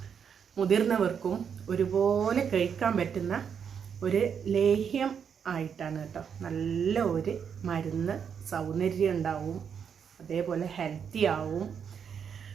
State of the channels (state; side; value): quieter; left; 7.3 dB